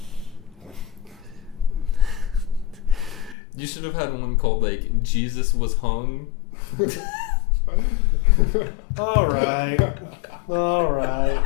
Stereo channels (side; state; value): right; drops out; at 3.4 s